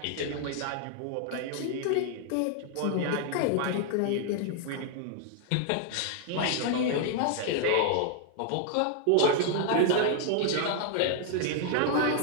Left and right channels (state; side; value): different; both; correlation 0.00